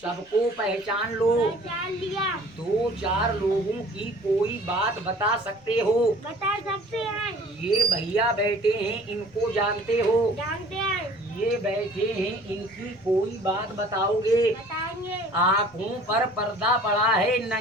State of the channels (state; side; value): noise; left; rumble, 30 dB below the sound